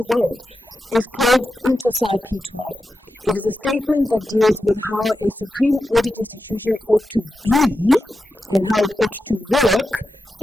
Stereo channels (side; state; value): both; normal; correlation 0.90